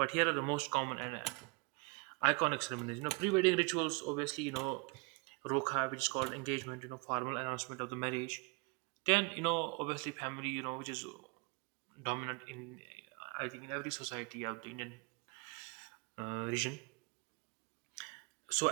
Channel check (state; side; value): quieter; left; 30.2 dB